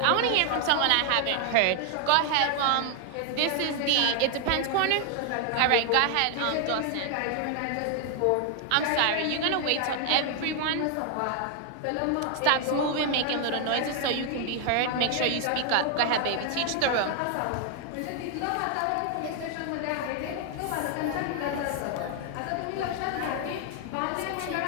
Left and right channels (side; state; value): both; different; correlation 0.00